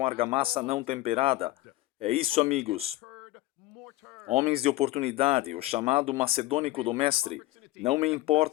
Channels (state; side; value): quieter; right; 17.4 dB